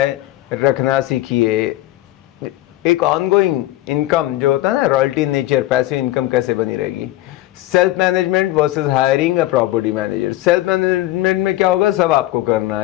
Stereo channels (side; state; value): right; quieter; 16.2 dB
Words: रखना सीखिए। एक ऑनगोइंग इनकम जो होता है ना, रॉयल्टी नेचर, पैसिव इनकम कैसे बनी रहेगी। Self management versus hiring a property manager. Self management में क्या होगा, सब आपको करना